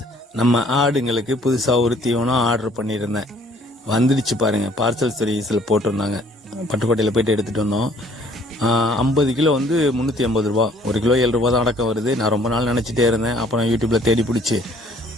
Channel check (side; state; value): both; normal; correlation 0.58